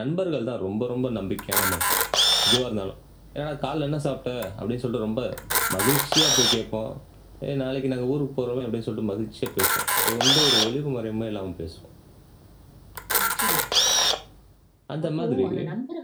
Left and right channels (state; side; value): identical; both; correlation 1.00